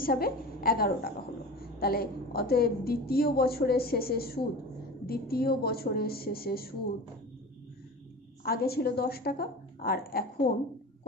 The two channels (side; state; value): both; normal; correlation 0.33